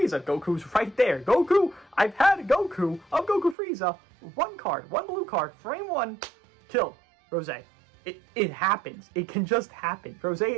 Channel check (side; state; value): left; drops out; at 3.6 s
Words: Goku's right there. Goku, I've had Goku of Goku Frieza. 1 card, 1 blue card, frame 1, killed. Rose. It happens. It can just happen. Rose